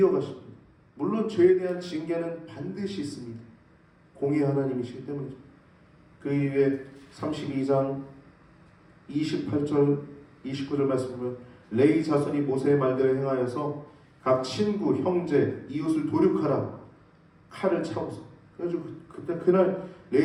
물론 죄에 대한 징계는 반드시 있습니다. 공의 하나님이시기 때문이죠. 그 이후에 32장 28절 29절 말씀 보면 레위 자손이 모세의 말대로 행하여서 각 친구, 형제, 이웃을 도륙하라. 칼을 차고서. 그래가지고 그때 그날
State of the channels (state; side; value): identical; both; correlation 1.00